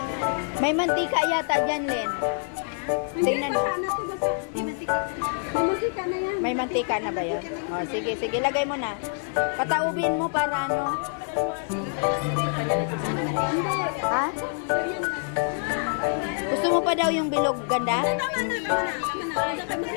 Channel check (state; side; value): silent; right; 61 dB below the other